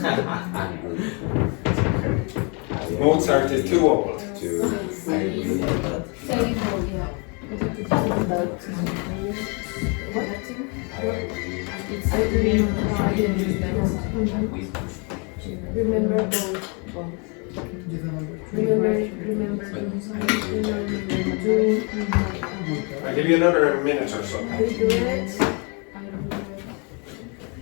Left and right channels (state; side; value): quieter; right; 34.0 dB